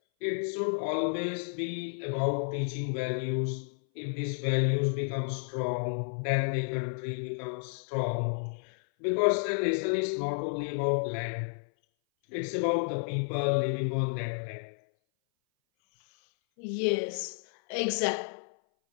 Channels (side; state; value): right; silent; 57 dB below the other